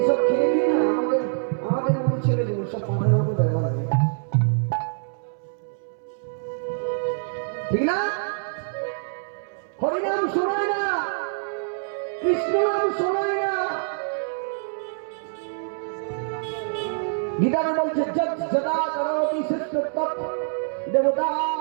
এসব খেয়ে দিয়ে না আমাদের মতো ছেলেগুলো সব পাখার মতো ব্যবহার করে, ঠিক না? হরিনাম শোনায় না, কৃষ্ণ নাম শোনায় না। গীতাতে বলছে যদা করোতি শ্রেষ্ঠ তৎ দেবতা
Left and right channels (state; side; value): silent; left; 62 dB below the other